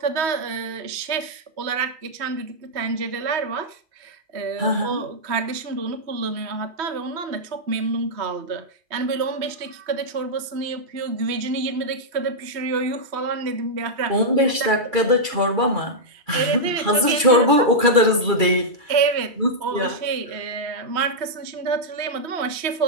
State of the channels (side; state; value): left; late; 2.3 ms